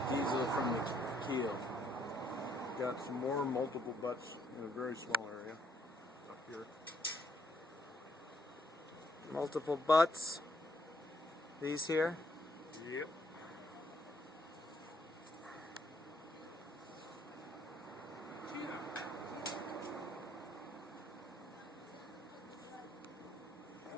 diesel from the keel. Got some more multiple butts in a very small area. up here. Multiple butts. These here. Yep.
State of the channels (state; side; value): normal; both; correlation 0.70